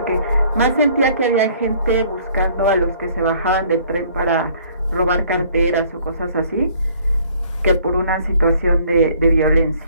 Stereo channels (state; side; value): inverted; both; correlation -0.58